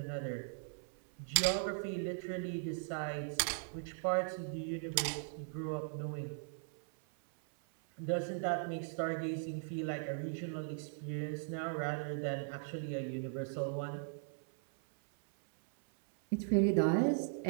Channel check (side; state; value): left; silent; 52 dB below the other